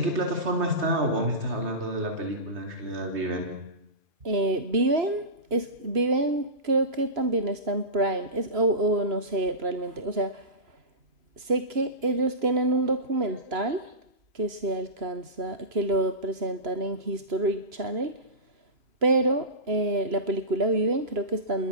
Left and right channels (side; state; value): left; late; 3.0 ms